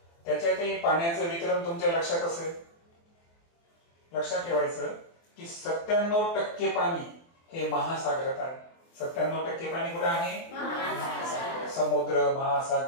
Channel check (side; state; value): right; late; 24 ms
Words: त्याच्यातही पाण्याचं वितरण तुमच्या लक्षात असेल. लक्षात ठेवायचं की 97% पाणी हे महासागरात आहे. 97% पाणी कुठे आहे? समुद्र,